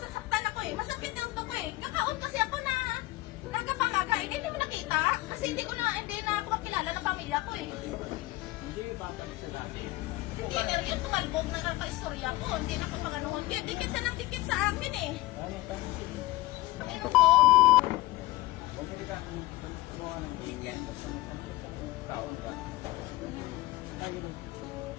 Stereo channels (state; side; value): quieter; right; 19.2 dB